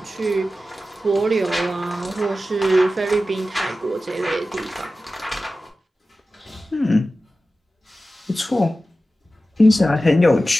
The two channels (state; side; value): normal; both; correlation 0.94